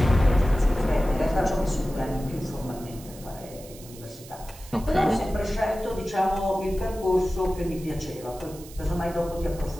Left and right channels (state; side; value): noise; right; hiss, 19 dB below the sound